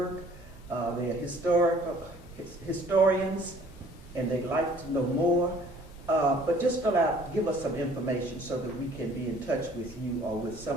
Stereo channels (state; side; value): normal; both; correlation 0.55